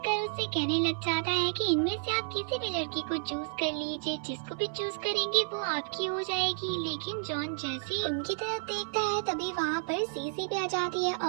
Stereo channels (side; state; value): left; silent; 57 dB below the other